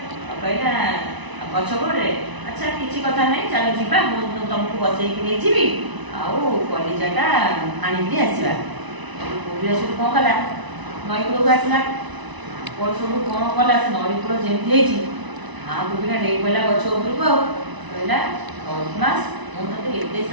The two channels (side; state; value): left; late; 1.0 ms